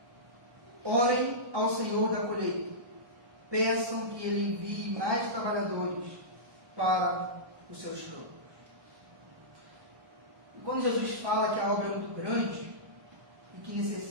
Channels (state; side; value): late; left; 1.2 ms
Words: Orem ao Senhor da colheita, peçam que Ele envie mais trabalhadores para os seus campos. E quando Jesus fala que a obra é muito grande e que